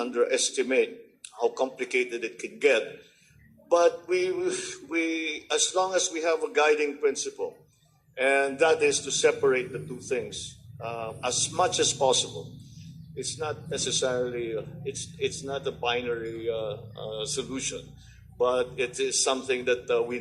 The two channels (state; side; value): identical; both; correlation 1.00